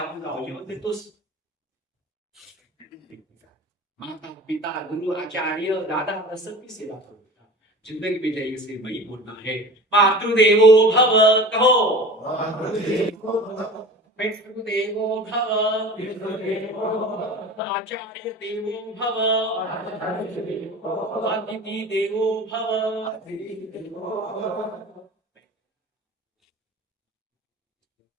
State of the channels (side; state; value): both; normal; correlation 0.37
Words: गाव जेवण देतोस। माता पिता गुरु आचार्य दादा सबकी सेवा करो। जिंदगी में जाइए से वही बोलना है, मातृदेवो भव। कहो पितृदेवो भव, आचार्य देवो भव, अतिथि देवो भव।